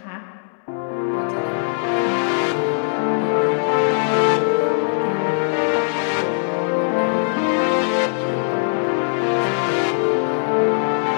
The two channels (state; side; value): silent; right; digital silence